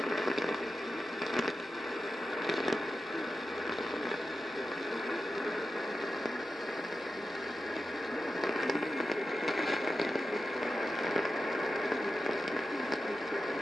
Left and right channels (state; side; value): normal; both; correlation 0.91